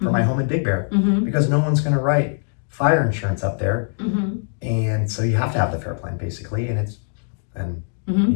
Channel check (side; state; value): right; silent; 61 dB below the other